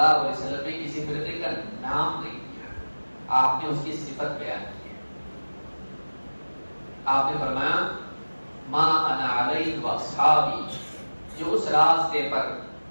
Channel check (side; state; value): both; inverted; correlation -1.00